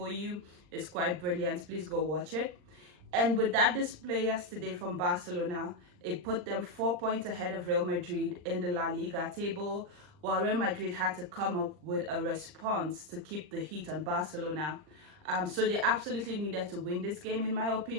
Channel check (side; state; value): left; late; 39 ms